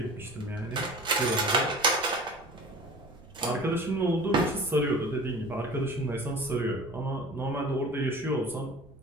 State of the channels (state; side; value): noise; right; rumble, 24 dB below the sound